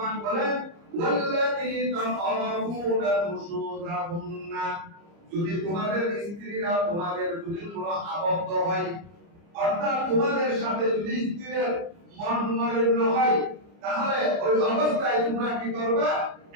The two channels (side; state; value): left; late; 30 ms